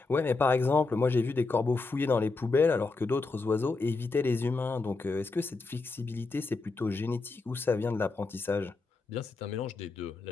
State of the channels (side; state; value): right; quieter; 3.8 dB